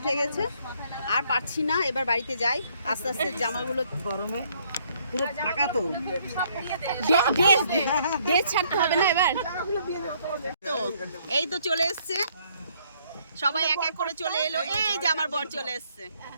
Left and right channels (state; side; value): inverted; both; correlation -0.67